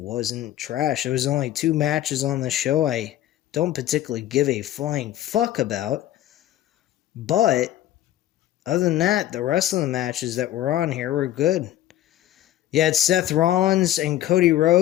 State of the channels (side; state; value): right; quieter; 13.2 dB